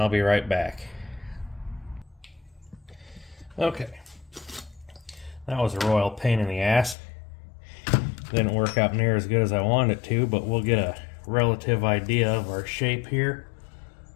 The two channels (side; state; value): right; drops out; at 7.0 s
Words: be right back. Okay. That was a royal pain in the ass. Didn't work out near as good as I wanted it to, but we'll get a relative idea of our shape here.